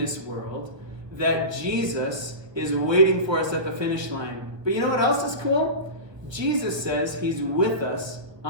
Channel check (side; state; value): left; late; 1.3 ms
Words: world that Jesus is waiting for us at the finish line. But you know what else is cool? Jesus says he's with us